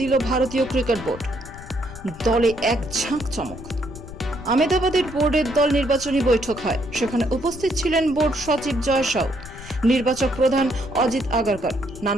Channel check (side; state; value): left; noise; rumble, 14 dB below the sound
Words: ভারতীয় ক্রিকেট বোর্ড। দলে এক ঝাঁক চমক। আহমেদাবাদের বোর্ডের দল নির্বাচনী বৈঠক হয়। সেখানে উপস্থিত ছিলেন বোর্ড সচিব জয় শাহ, নির্বাচক প্রধান অজিত আগারকর।